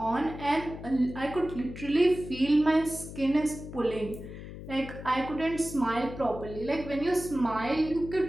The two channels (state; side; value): noise; left; hum, 12 dB below the sound